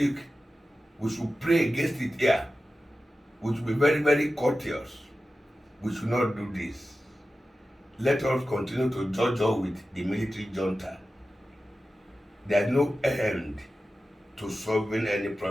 we should pray against it here. We should be very, very courteous. We should not do this. Let us continue to judge with the military junta. There is no end to solving any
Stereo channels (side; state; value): both; normal; correlation 0.94